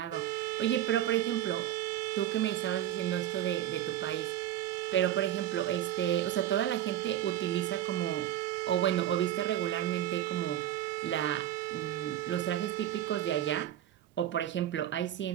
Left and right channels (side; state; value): left; quieter; 12.1 dB